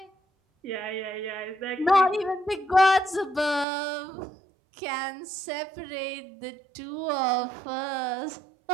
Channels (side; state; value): left; drops out; at 3.7 s